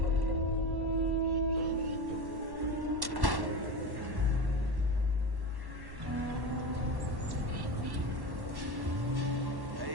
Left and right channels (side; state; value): left; late; 1.1 ms